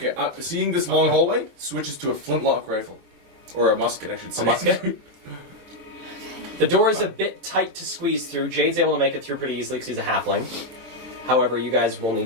seeing this long hallway switches to a flintlock rifle. Or a musket, I should say. a musket. The door is a bit tight to squeeze through. Jade's able to make it through pretty easily because he's a halfling. However, you guys will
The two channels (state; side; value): late; left; 24 ms